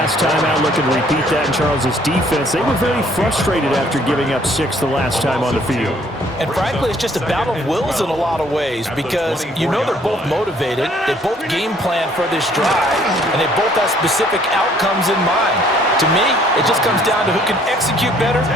time out, looking to repeat that in Charles's defense. They were very frustrated after giving up 6 the last time on the field. And frankly, it's just a battle of wills in a lot of ways because you know they're both motivated, they both game plan for this drive, and they both have specific outcomes in mind. To me, it just comes down to who can execute better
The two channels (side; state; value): both; normal; correlation 0.61